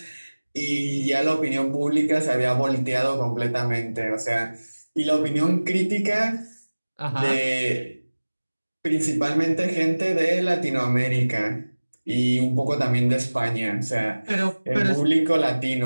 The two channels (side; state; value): both; inverted; correlation -1.00